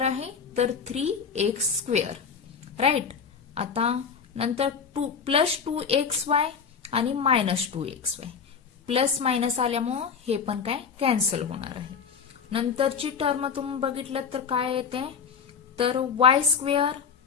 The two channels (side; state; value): right; quieter; 6.4 dB